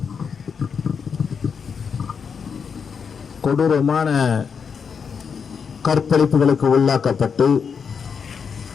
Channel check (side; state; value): right; quieter; 6.3 dB